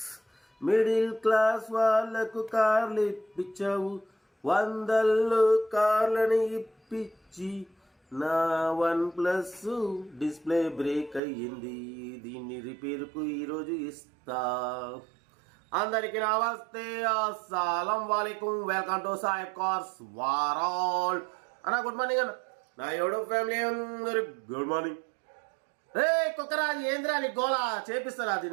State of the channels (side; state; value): left; drops out; at 11.2 s